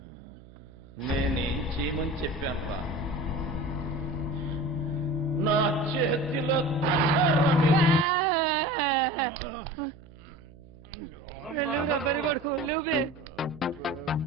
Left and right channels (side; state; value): right; noise; hum, 21 dB below the sound